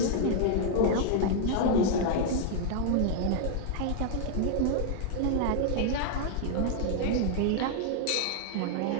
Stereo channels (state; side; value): different; both; correlation 0.00